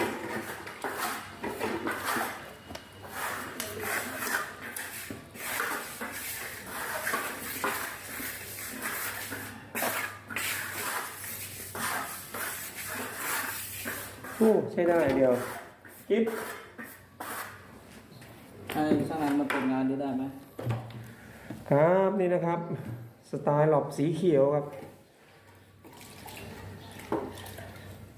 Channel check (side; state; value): both; identical; correlation 1.00